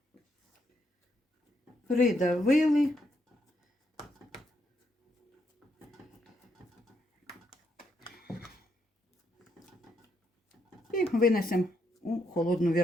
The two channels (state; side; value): normal; both; correlation 0.77